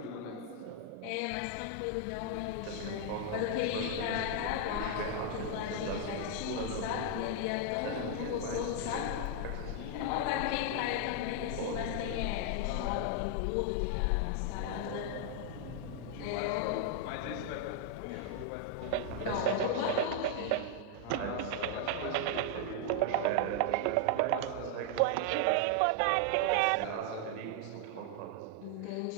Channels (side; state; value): both; different; correlation 0.00